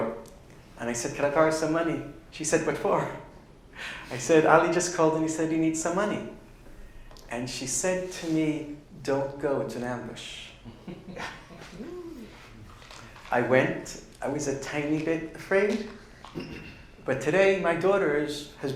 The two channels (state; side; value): identical; both; correlation 1.00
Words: and I said, "Can I borrow some money?" She said, "What for?" I said, "Ali just called and he said he needs some money." And she said to me, "Don't go, it's an ambush." I went, I was a tiny bit afraid, but today my daughter has